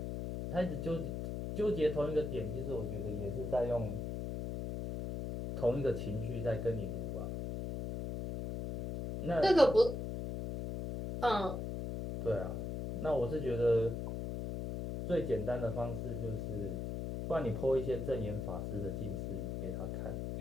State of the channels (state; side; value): noise; left; hum, 4 dB below the sound